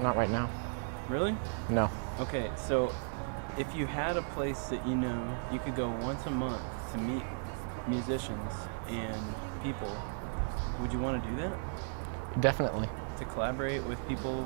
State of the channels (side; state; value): left; silent; 54 dB below the other